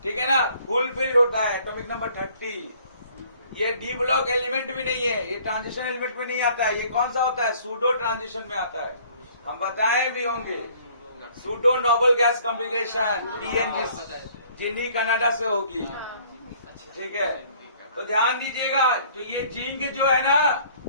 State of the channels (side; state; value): both; inverted; correlation -0.57